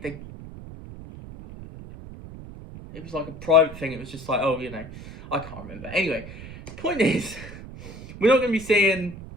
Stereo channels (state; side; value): noise; right; rumble, 14 dB below the sound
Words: was like a private thing. It was just like, I can't remember. Anyway, the point is, we're not going to be seeing